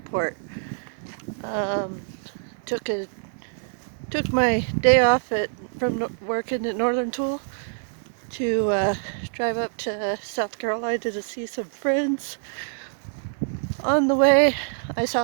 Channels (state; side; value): silent; left; digital silence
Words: Um, took my day off from working at Northern Tool to drive up to South Carolina to see some friends. On the way, I